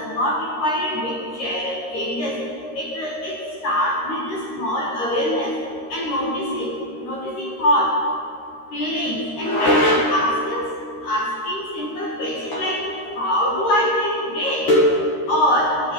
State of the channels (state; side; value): late; right; 13 ms